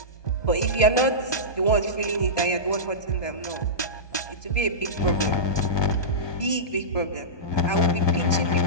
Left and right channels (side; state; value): right; late; 1.2 ms